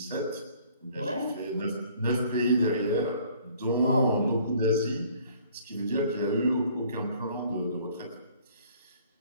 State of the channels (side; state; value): both; inverted; correlation -0.57